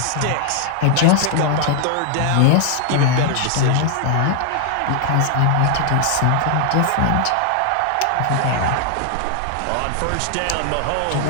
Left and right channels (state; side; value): different; both; correlation 0.00